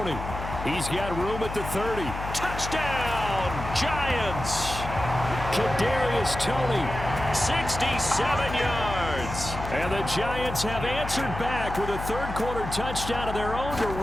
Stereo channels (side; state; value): left; noise; hum, 7 dB below the sound